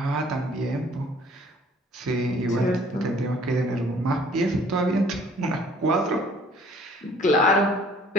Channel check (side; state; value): both; normal; correlation 0.56